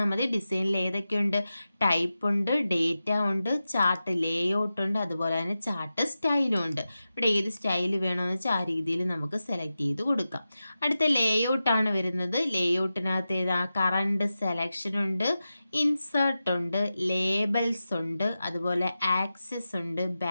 മതി. ഡിസൈനിൽ ഏതൊക്കെയുണ്ട്? ടൈപ്പ് ഉണ്ട്, ഡേറ്റ ഉണ്ട്, ചാർട്ട് ലേഔട്ട് ഉണ്ട്, അതുപോലെ തന്നെ ചാർട്ട് സ്റ്റൈലും ഉണ്ട്. ഇവിടെ ഏത് സ്റ്റൈൽ വേണമെന്ന് വെച്ചാൽ ആ രീതിയിൽ നമുക്ക് സെലക്ട് ചെയ്ത് കൊടുക്കാം. അടുത്ത ലേഔട്ടാണ് വരുന്നത്. ലേഔട്ടിനകത്ത് ഏതാ? കറണ്ട് സെലക്ഷൻ ഉണ്ട്, ഇൻസേർട്ട് ഉണ്ട്, ലേബൽസ് ഉണ്ട്, അതുപോലെ ആക്സസ് ഉണ്ട്,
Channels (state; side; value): inverted; both; correlation -0.93